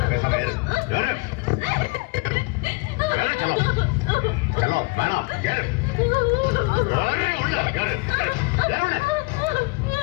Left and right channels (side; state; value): right; quieter; 26.7 dB